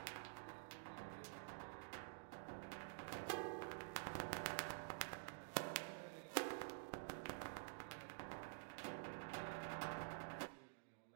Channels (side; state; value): left; silent; digital silence